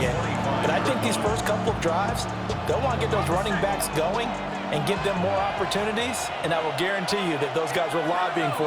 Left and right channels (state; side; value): identical; both; correlation 1.00